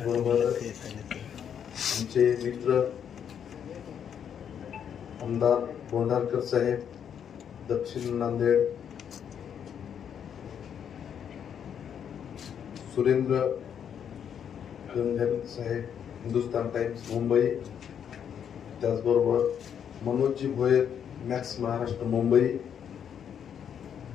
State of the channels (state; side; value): quieter; right; 8.4 dB